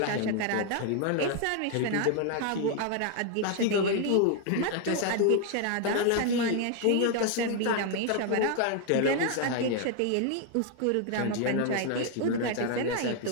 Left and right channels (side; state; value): both; different; correlation 0.00